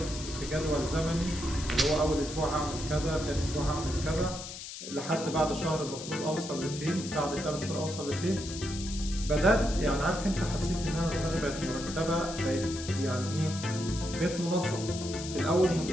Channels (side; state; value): left; noise; hiss, 10 dB below the sound